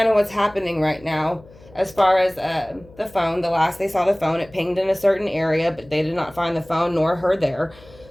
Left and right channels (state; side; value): noise; left; hum, 24 dB below the sound